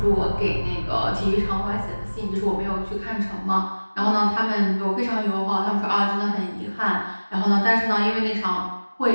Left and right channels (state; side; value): inverted; both; correlation -1.00